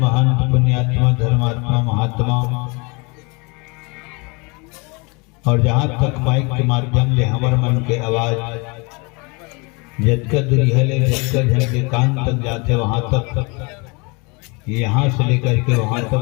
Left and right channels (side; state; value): right; quieter; 29.3 dB